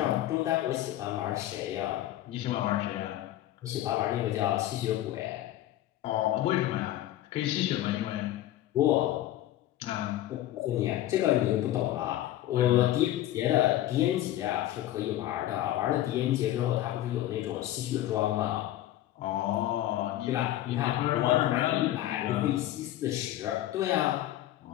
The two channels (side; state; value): right; quieter; 13.7 dB